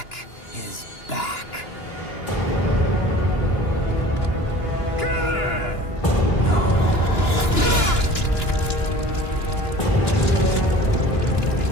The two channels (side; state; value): right; late; 2.9 ms